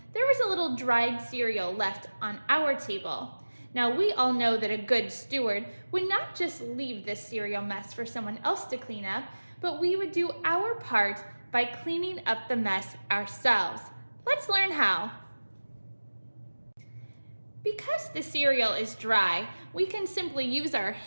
there was a little dried cereal left on our table. Now, we all know that a good steward would not just leave this cereal mess for someone else to clean up, but we would do our part by cleaning up the mess ourselves. Let's learn how. Because the cereal is dry, we can simply use our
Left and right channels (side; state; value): both; inverted; correlation -1.00